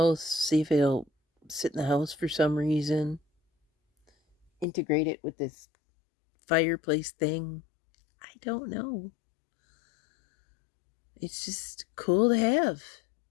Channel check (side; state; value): right; drops out; at 4.7 s